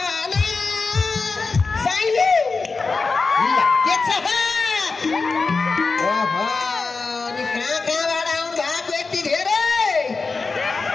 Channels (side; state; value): right; quieter; 4.2 dB